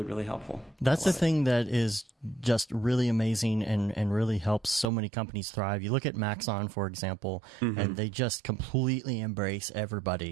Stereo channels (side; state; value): left; drops out; at 4.9 s